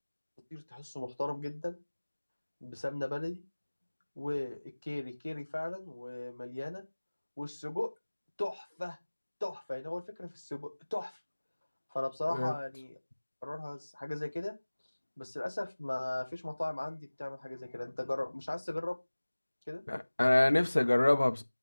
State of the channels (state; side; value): inverted; both; correlation -1.00